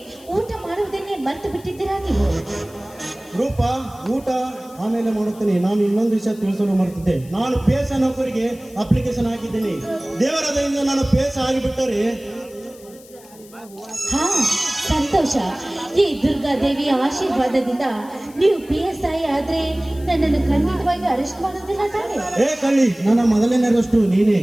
ಊಟ ಮಾಡುವುದನ್ನೇ ಮರೆತು ಬಿಟ್ಟಿದ್ದೀರಾ ನೀವು? ರೂಪ ಊಟ ಆಮೇಲೆ ಮಾಡುತ್ತೇನೆ. ನಾನು ಇನ್ನೊಂದು ವಿಷಯ ತಿಳಿಸಲು ಮರೆತಿದ್ದೆ. ನಾನು ಪೇಸ ನೌಕರಿಗೆ ಅಪ್ಲಿಕೇಶನ್ ಹಾಕಿದ್ದೇನೆ. ದೇವರ ದಯಿಂದ ನಾನು ಪೇಸ ಆಗಿಬಿಟ್ಟರೆ ಹಾ, ಸಂತೋಷ. ಈ ದುರ್ಗಾದೇವಿಯ ಆಶೀರ್ವಾದದಿಂದ ನೀವು PSI ಆದ್ರೆ ನನ್ನನ್ನು ಖಂಡಿತವಾಗಿ ಅರೆಸ್ಟ್ ಮಾಡೋದಿಲ್ಲ ತಾನೆ? ಏ ಕಳ್ಳಿ, ನನ್ನ ಮೊದಲನೇ ಅರೆಸ್ಟು ನೀನೇ.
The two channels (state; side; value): noise; left; hiss, 23 dB below the sound